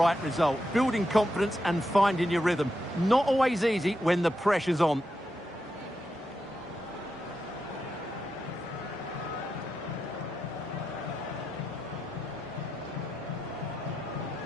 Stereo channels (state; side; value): normal; both; correlation 0.86